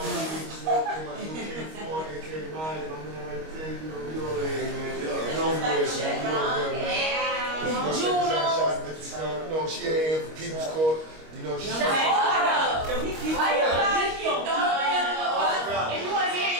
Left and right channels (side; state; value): left; late; 25 ms